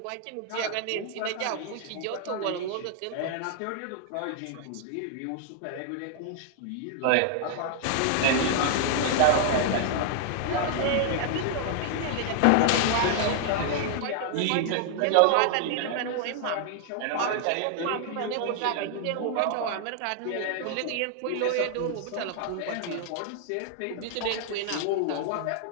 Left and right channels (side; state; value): both; different; correlation 0.00